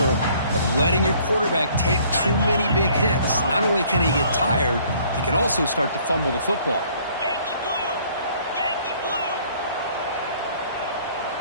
of letting your quarterback take too many big hits. Not only can he get tired, he can also start to fumble the football.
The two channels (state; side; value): inverted; both; correlation -0.59